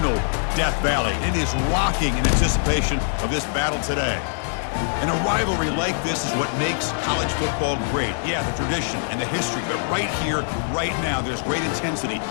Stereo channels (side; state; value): right; silent; digital silence